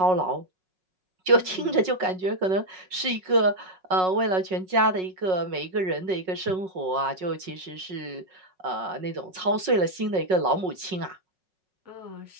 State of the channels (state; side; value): late; left; 5.4 ms